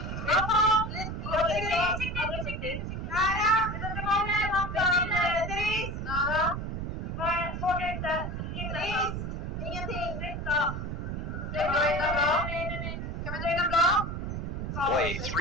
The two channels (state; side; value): noise; right; rumble, 4 dB below the sound